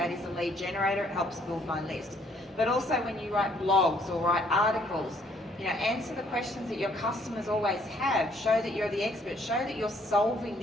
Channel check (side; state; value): both; normal; correlation 0.65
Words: is a lead generator. It helps build my list. But also when you write blogs or write articles, answer the questions that your customers always have. Show that you're the expert. Show that you're solving